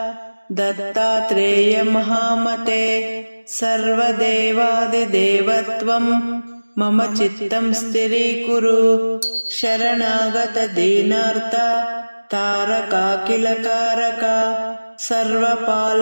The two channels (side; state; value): both; inverted; correlation -1.00